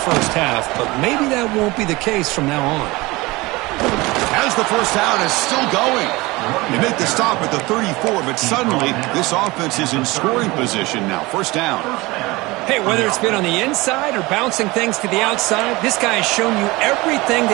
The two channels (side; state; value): left; quieter; 22.0 dB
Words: half, but maybe that won't be the case from now on. As the first down is still going. They make the stop at the 34, but suddenly this offense is in scoring position now. First down. Hey, whether it's been on the inside or bouncing things to the outside, this guy has shown you everything